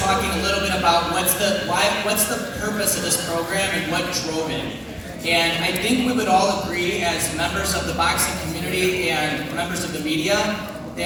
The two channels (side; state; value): both; identical; correlation 1.00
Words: a little bit about what's the purpose of this program and what drove it. And I think we would all agree as members of the boxing community and members of the media